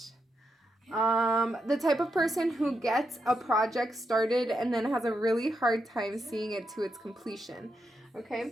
The type of person who gets a project started and then has a really hard time seeing it to its completion.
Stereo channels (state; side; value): normal; both; correlation 0.83